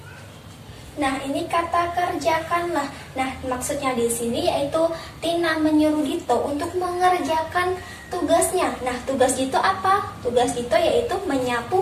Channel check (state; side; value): identical; both; correlation 1.00